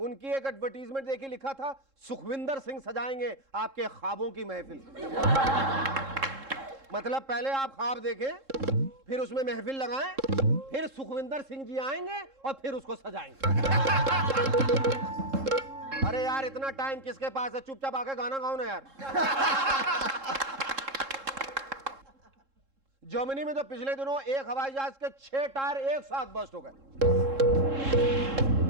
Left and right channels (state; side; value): late; left; 3.7 ms